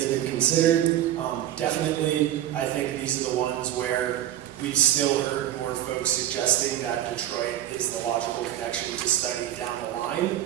been considered? Definitely, I think these are the ones where we've still heard more folks suggesting that Detroit is the logical connection to study down the line.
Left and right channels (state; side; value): quieter; left; 12.2 dB